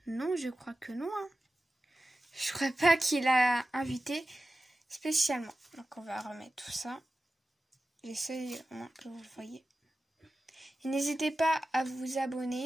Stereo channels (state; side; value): normal; both; correlation 0.94